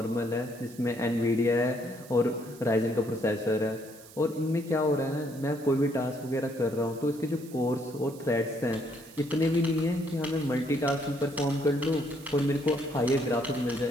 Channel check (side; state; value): right; noise; hiss, 21 dB below the sound